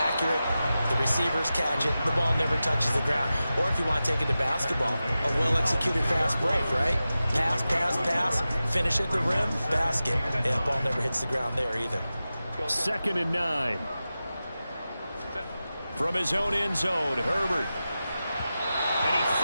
The receivers catch it. The ball never touches the ground. Or if you want to take it to basketball, a well-executed fast break, right? Pass, pass, pass. Finish at the rim, basket. Yeah, the ball never hits the ground there either. 2nd and 9. From his own end zone, Herbert. And he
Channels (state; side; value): inverted; both; correlation -0.94